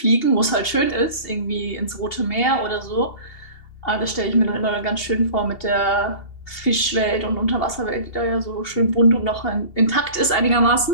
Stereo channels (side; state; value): right; late; 2.7 ms